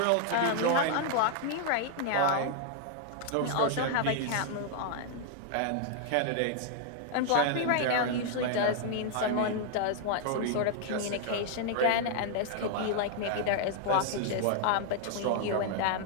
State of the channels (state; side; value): different; both; correlation 0.00